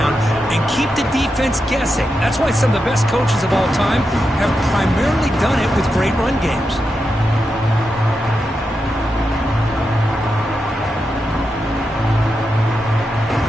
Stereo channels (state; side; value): normal; both; correlation 0.87